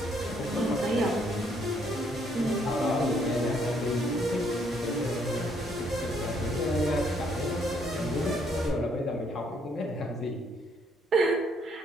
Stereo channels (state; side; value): normal; both; correlation 0.69